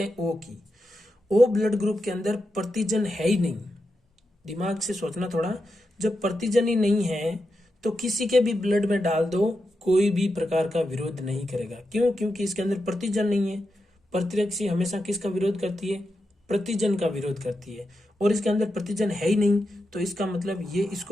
हैं ओ की। ओ ब्लड ग्रुप के अंदर प्रतिजन है ही नहीं। दिमाग से सोचना थोड़ा, जब प्रतिजन ही नहीं है तो किसी के भी ब्लड में डाल दो, कोई भी प्रकार का विरोध नहीं करेगा। क्यों? क्योंकि इसके अंदर प्रतिजन नहीं है। प्रतिरक्षी हमेशा किसका विरोध करती है? प्रतिजन का विरोध करती है। और इसके अंदर प्रतिजन है ही नहीं, तो इसका मतलब ये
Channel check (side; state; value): both; normal; correlation 0.87